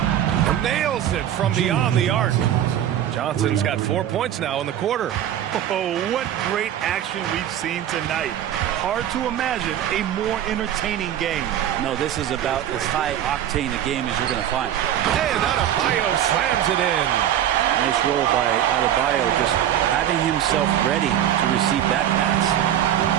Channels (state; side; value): quieter; left; 10.9 dB